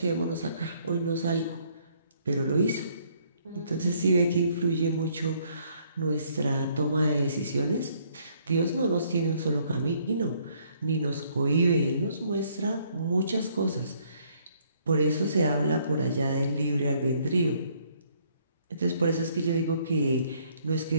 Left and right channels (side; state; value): both; inverted; correlation -0.66